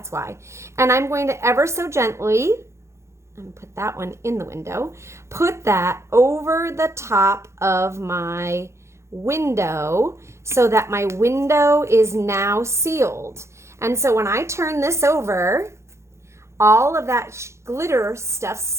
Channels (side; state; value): left; late; 0.13 ms